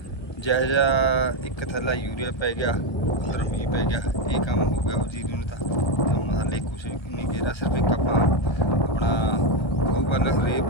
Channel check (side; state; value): right; late; 1.2 ms